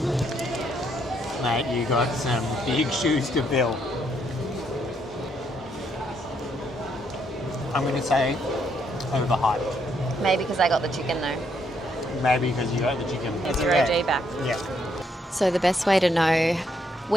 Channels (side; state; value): both; normal; correlation 0.73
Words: Mate, you got some big shoes to fill. I'm gonna say overhyped. Maybe because I got the chicken though. Maybe because you got the chicken. It's your OG back. Yeah. So the best way to know